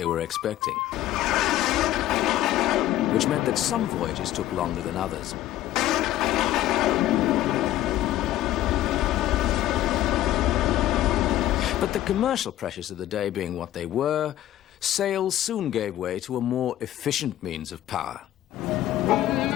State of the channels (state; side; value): quieter; right; 13.5 dB